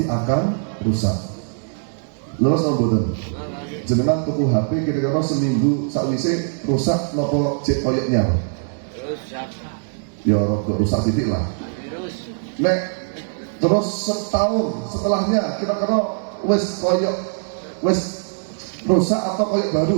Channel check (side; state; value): left; silent; digital silence